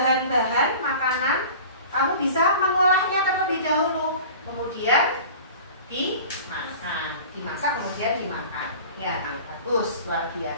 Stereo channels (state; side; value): inverted; both; correlation -0.40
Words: makanan, kamu bisa mengolahnya terlebih dahulu. Kemudian dimasak kemudian dimakan. Ya, bagus, luar